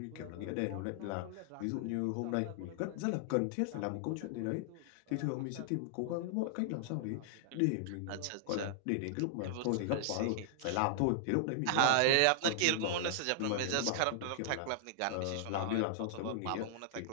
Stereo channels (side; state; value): both; different; correlation -0.01